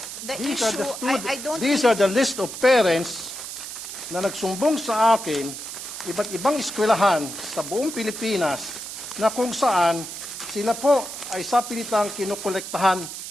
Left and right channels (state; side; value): noise; right; hiss, 9 dB below the sound